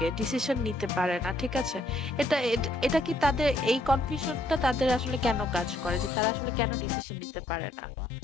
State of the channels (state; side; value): drops out; right; at 6.1 s